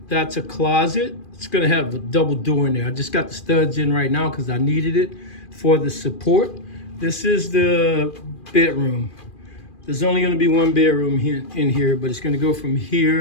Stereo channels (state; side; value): late; right; 2.4 ms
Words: That's a closet. It's going to have a double door in there. I just got the studs in right now because I needed it for the support. This is the bedroom. There's only going to be one bedroom in here, but it's going to go from